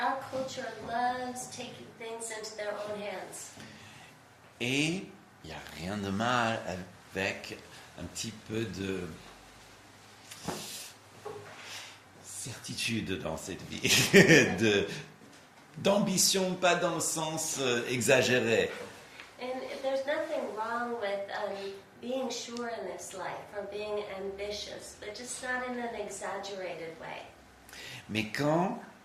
culture loves taking things into their own hands. Et il n'y a rien de mal avec un petit peu de certitude dans cette vie, d'ambition, pas dans le sens exagéré. And there's nothing wrong with being sure in this life or being ambitious, but just not in an exaggerated way. Mais quand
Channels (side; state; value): both; identical; correlation 1.00